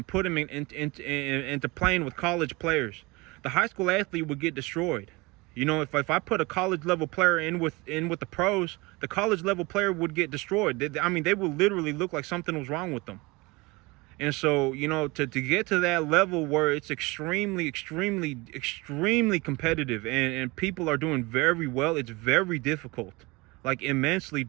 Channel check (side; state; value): left; quieter; 24.3 dB